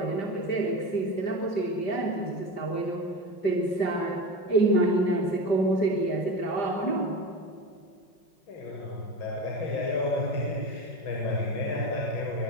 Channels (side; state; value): right; late; 5.5 ms